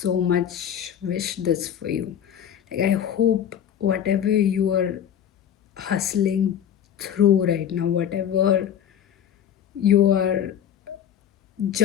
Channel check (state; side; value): quieter; right; 9.5 dB